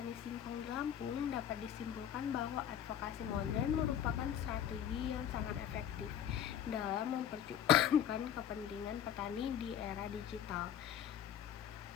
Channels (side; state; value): right; quieter; 9.6 dB